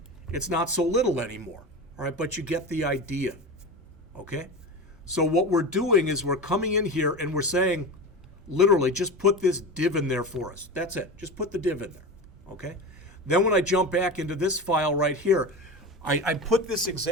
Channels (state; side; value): normal; both; correlation 0.26